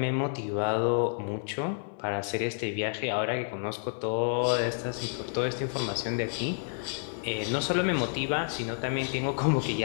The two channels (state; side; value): silent; right; digital silence